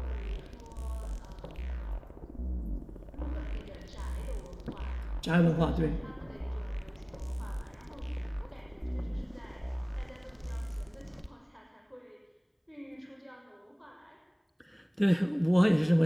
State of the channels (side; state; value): both; identical; correlation 1.00